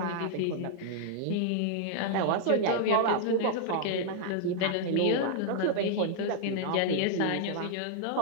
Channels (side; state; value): both; different; correlation -0.01